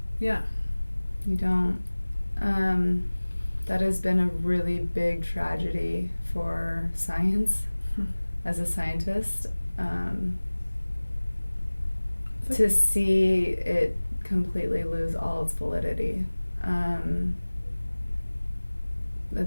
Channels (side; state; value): both; inverted; correlation -1.00